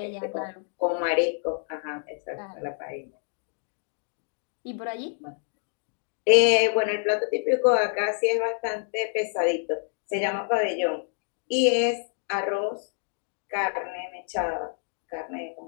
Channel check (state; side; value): silent; right; 56 dB below the other